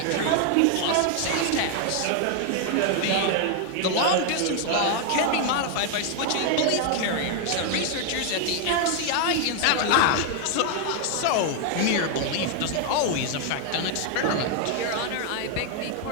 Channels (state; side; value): different; both; correlation 0.00